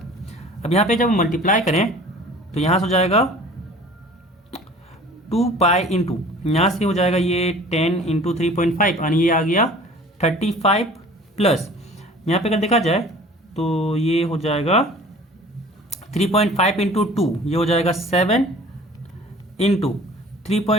अब यहाँ पे जब मल्टीप्लाई करें तो यहाँ से हो जाएगा 2π इंटू यहाँ से हो जाएगा ये 10 इंटू 3.5 यानी ये आ गया 35 प्लस यहाँ पे अगर देखा जाए तो ये हो जाएगा 3.5 इंटू 2, ये हो जाएगा 7 इंटू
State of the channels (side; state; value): both; normal; correlation 0.46